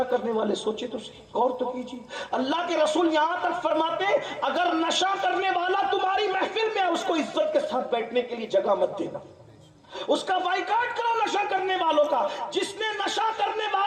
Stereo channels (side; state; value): both; identical; correlation 1.00